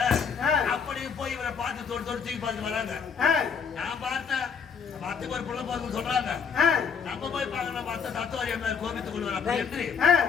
அப்படி போய் இவரை பார்த்து தொட்டு தூக்கி பார்த்து வராங்க. நான் பார்த்தேன் பத்துக்கு ஒரு பிள்ளை போதும் சொல்றாங்க. நம்ம போய் பார்க்கணும் பார்த்த தத்துவாரி அம்மையார் கோபித்துக் கொள்வார் அப்படி என்று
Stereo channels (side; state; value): right; quieter; 6.4 dB